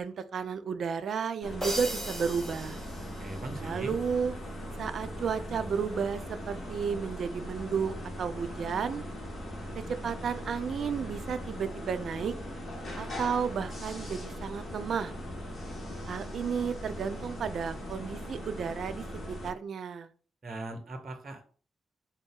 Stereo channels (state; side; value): quieter; left; 4.6 dB